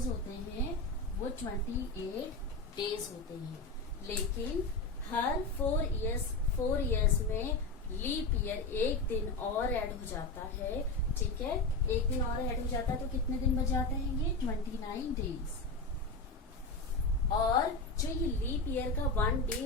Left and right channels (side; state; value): right; quieter; 3.3 dB